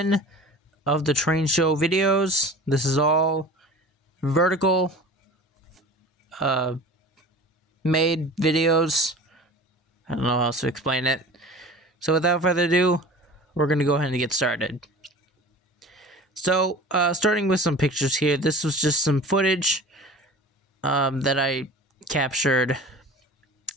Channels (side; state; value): both; normal; correlation 0.39